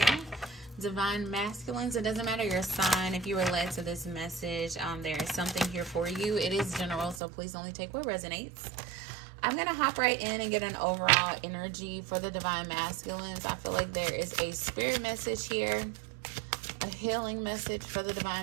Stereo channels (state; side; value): drops out; left; at 7.2 s